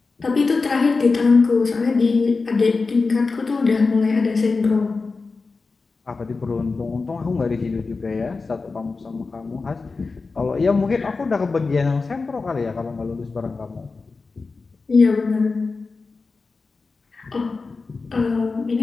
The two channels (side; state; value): right; quieter; 4.1 dB